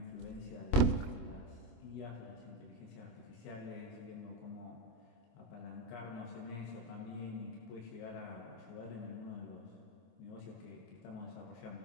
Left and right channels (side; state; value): right; late; 25 ms